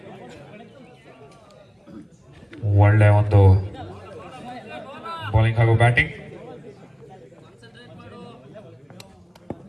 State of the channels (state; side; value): identical; both; correlation 1.00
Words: ಒಳ್ಳೆ ಒಂದು ಬೌಲಿಂಗ್ ಹಾಗೂ ಬ್ಯಾಟಿಂಗ್.